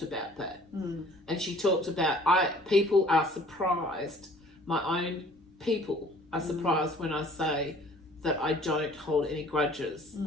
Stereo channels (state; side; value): normal; both; correlation 0.53